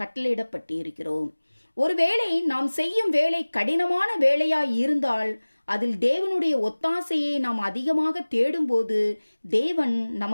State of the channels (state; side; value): inverted; both; correlation -1.00